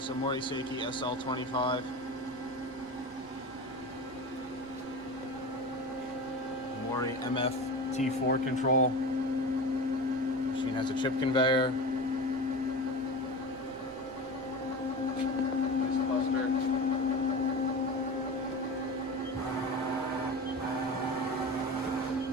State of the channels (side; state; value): right; noise; rumble, 24 dB below the sound